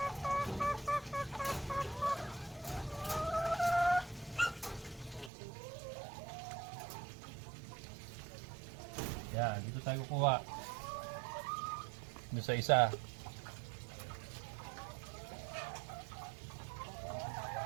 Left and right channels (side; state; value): left; drops out; at 5.3 s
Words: Yan, dito tayo kukuha. Doon sa isa.